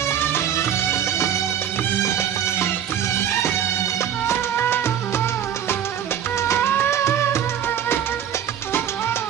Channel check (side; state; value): left; quieter; 9.5 dB